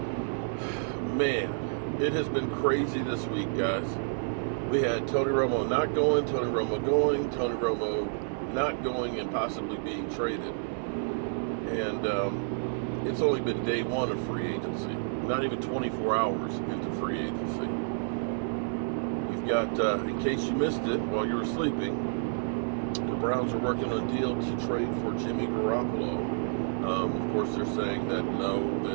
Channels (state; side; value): silent; left; 58 dB below the other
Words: Man, it has been crazy this week, guys. We had Tony Romo not going, Tony Romo going, Tony Romo not going, and possibly being traded. And it's only been day one of free agency. Not even 24 hours into free agency. You've got, in case you missed it while you were sleeping, the Browns are working on a deal to trade for Jimmy Garoppolo. Of course, they're saying that no,